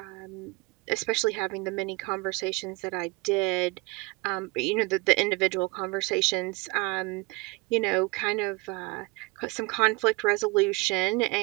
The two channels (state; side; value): quieter; left; 25.3 dB